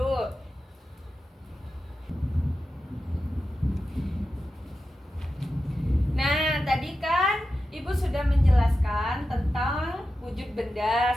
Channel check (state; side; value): normal; both; correlation 0.91